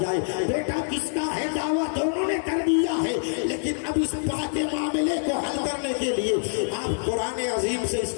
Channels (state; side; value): silent; right; 61 dB below the other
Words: جائے؟ بیٹا کس کا ہے؟ دعویٰ دونوں نے کر دیا ہے, لیکن اب اس بات کے معاملے کو حل کرنے کے لیے آپ قرآن عظیم سے اس